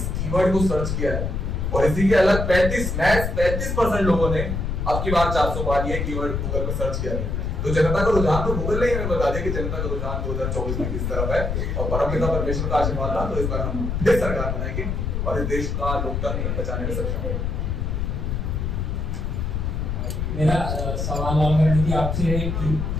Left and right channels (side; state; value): left; noise; rumble, 1 dB below the sound